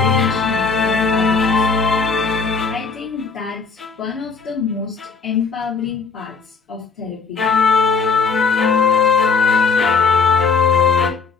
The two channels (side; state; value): right; quieter; 5.0 dB